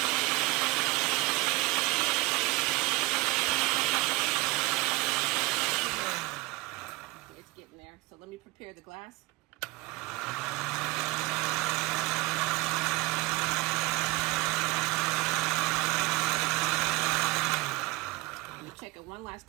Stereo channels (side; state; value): left; quieter; 22.6 dB